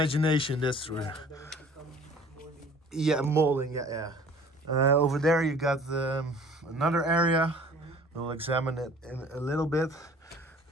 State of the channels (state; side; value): normal; both; correlation 0.49